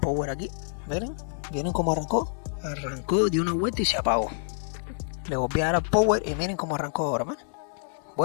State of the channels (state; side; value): silent; right; digital silence